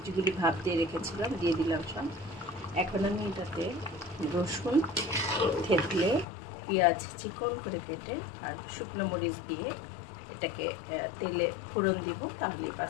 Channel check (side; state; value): right; drops out; at 6.2 s